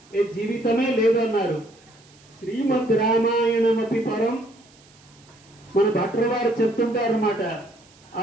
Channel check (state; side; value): noise; right; hiss, 28 dB below the sound